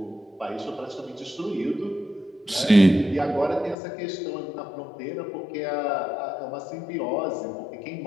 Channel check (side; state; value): right; drops out; at 3.8 s